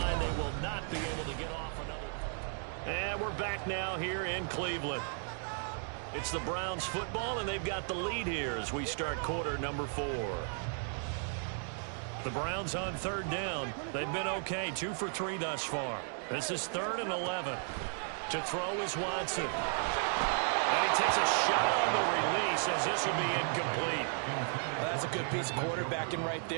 they will not be able to get off another. And we're back now here in Cleveland. It's the Browns football, and they've got the lead here as we start quarter number 4. The Browns on 3rd down. They've been okay, 2 for 3 thus far. This is 3rd and 11. To throw is Watson. And he takes a shot on the release as this will be incomplete. Well, that's a good piece of quarterbacking right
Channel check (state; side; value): silent; left; 55 dB below the other